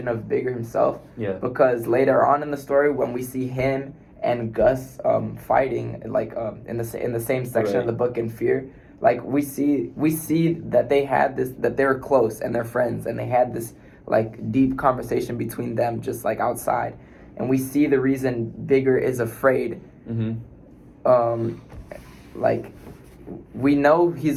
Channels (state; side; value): identical; both; correlation 1.00